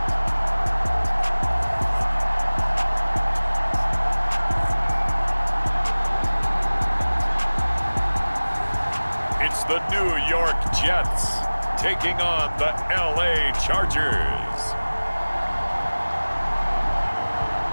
It's the New York Jets taking on the LA Chargers.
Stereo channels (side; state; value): both; inverted; correlation -1.00